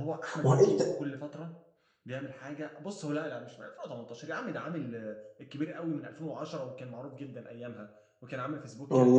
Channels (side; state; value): both; identical; correlation 1.00